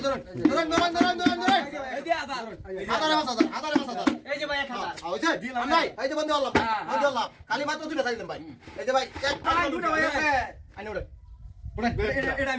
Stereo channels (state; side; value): identical; both; correlation 1.00